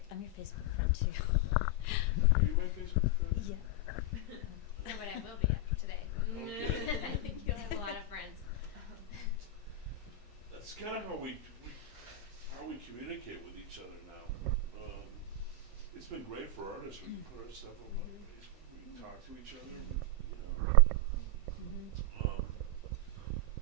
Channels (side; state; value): both; normal; correlation 0.00